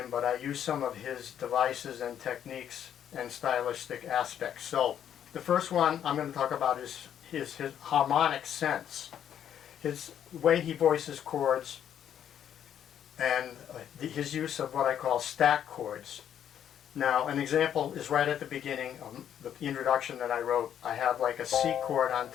but I use some of his devices and techniques and stylistic aspects. So the first one I'm going to talk about is his harmonic sense. His way he voices chords and his use of what I call stack chords. Now an example is right at the beginning of the introduction that I wrote. I have like a C chord on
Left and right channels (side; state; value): right; quieter; 9.6 dB